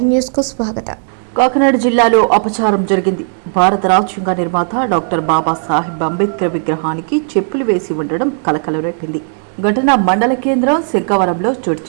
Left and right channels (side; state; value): left; silent; digital silence